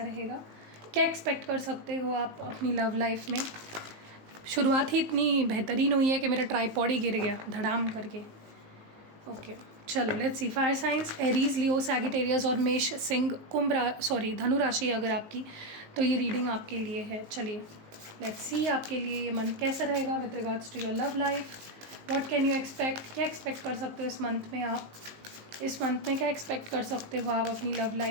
रहेगा, क्या एक्सपेक्ट कर सकते हो आप अपनी लव लाइफ में। शुरुआत ही इतनी बेहतरीन हुई है कि मेरा ट्राईपॉड ही गिर गया धड़ाम करके। ओके, चलो let's see. Fire science Aries, Leo, Sagittarius और मेष, सिंह, धनु राशि अगर आपकी, तो ये रीडिंग आपके लिए है। चलिए लेट्स सी आपके लिए ये मंथ कैसा रहेगा with regards to your love life. What can you expect, क्या एक्सपेक्ट कर सकते हो इस मंथ में आप? इस मंथ में क्या एक्सपेक्ट कर सकते हो आप अपनी लव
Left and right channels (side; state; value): left; late; 19 ms